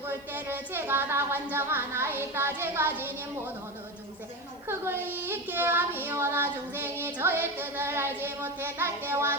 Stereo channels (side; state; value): left; noise; hiss, 28 dB below the sound